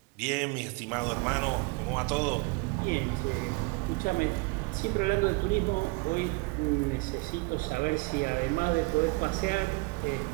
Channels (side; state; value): left; quieter; 26.7 dB